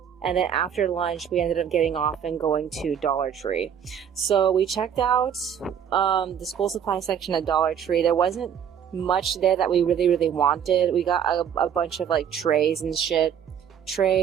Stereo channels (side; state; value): left; quieter; 8.5 dB